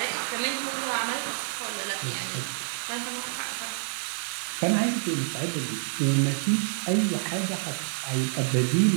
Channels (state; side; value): silent; left; digital silence